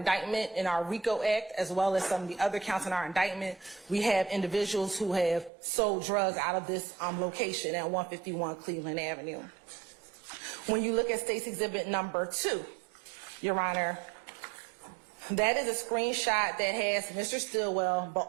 in our RICO Act, as well as some of the other counts in our indictment, we have individuals who have sold drugs out of this location at 151 Cleveland Avenue. When you look at State's Exhibit number 2, Your Honor, that is a screenshot that has Mr. Stillwell, but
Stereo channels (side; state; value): left; drops out; at 5.5 s